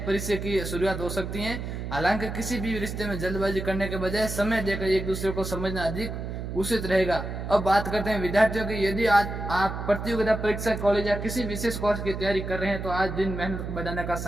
परिचय की शुरुआत हो सकती है। हालांकि किसी भी रिश्ते में जल्दबाजी करने के बजाय समय देकर एक दूसरे को समझना अधिक उचित रहेगा। अब बात करते हैं विद्यार्थियों की। यदि आज आप प्रतियोगिता परीक्षा, कॉलेज या किसी विशेष कोर्स की तैयारी कर रहे हैं तो आज दिन मेहनत बढ़ाने का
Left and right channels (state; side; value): noise; right; hum, 6 dB below the sound